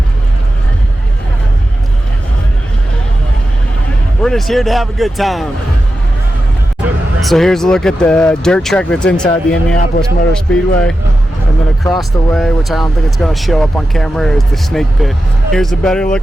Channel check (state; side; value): normal; both; correlation 0.91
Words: We're just here to have a good time. So here's a look at the dirt track that's inside the Indianapolis Motor Speedway. And then across the way, which I don't think it's going to show up on camera, is the snake pit. Here's a better